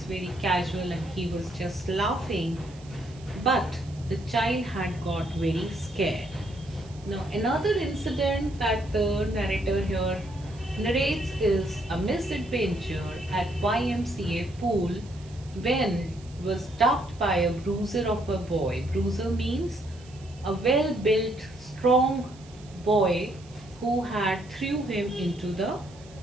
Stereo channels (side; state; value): right; noise; hiss, 24 dB below the sound